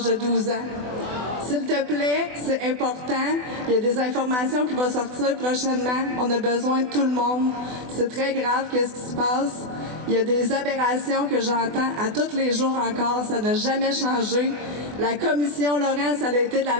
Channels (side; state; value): left; late; 24 ms